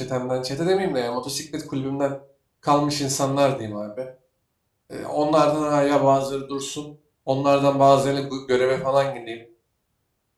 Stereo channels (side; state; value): both; identical; correlation 1.00